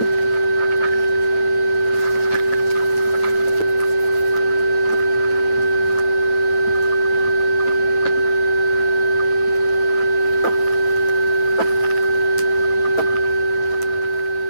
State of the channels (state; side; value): late; right; 9.2 ms